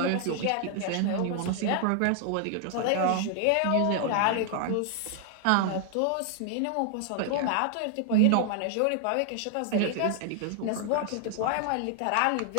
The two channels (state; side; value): different; both; correlation 0.00